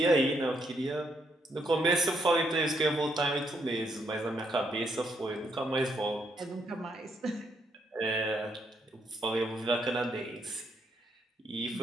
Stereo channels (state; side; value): normal; both; correlation 0.75